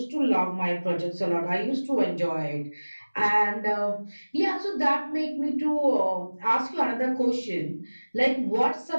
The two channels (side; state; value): both; inverted; correlation -1.00